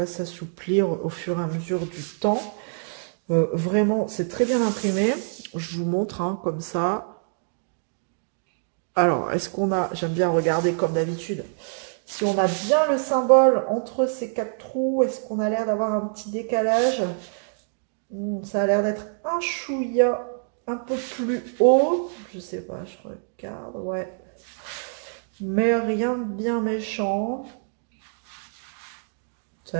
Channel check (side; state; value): left; silent; digital silence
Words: s'assouplir au fur et à mesure du temps. Vraiment, c'est très bien imprimé. Je vous montre, hein, comme ça. Alors, est-ce qu'on a... J'aime bien regarder comme d'habitude. Si on a bien le symbole entre ces 4 trous, est-ce qu'on a l'air d'avoir un petit décalage? Ça a l'air d'être un chouïa un peu plus haut. Je sais pas, je regarde, ouais. Mais rien de bien méchant. Ça